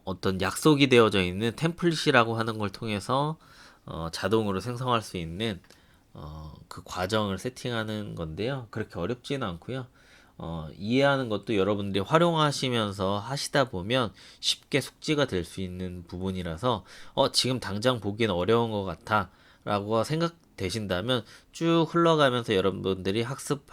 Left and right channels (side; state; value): both; identical; correlation 1.00